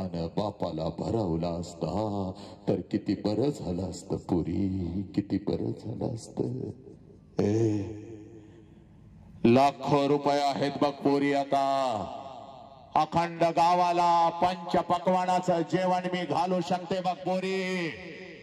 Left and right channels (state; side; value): identical; both; correlation 1.00